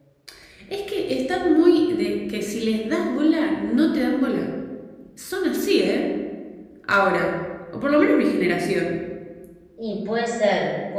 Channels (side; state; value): both; identical; correlation 1.00